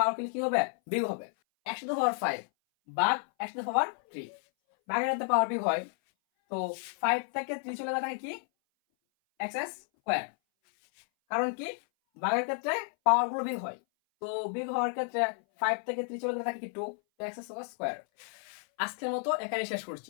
কি হবে? বিয়োগ হবে। x টু দ্য পাওয়ার 5 ভাগ x টু দ্য পাওয়ার 3, ভাগের সাথে পাওয়ার বিয়োগ হয়। তো 5 থেকে 3 চলে গেলে থাকে কি x স্কয়ার। কারণ কি ভাগের ক্ষেত্রে পাওয়ার গুলো বিয়োগ হয়, তো বিয়োগ হওয়ার ক্ষেত্রে 5 থেকে 3 চলে গেলে থাকে কি 2, তো x স্কয়ার। আজকের মতো এখানে শেষ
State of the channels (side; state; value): right; silent; 57 dB below the other